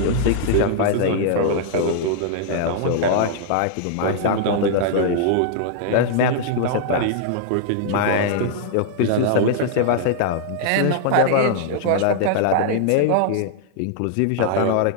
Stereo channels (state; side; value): different; both; correlation -0.01